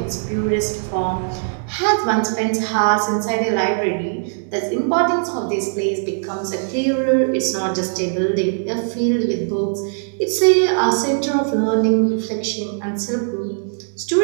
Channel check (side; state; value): left; silent; digital silence